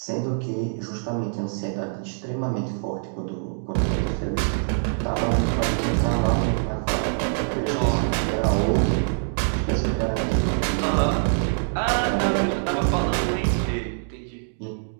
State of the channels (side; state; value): left; silent; digital silence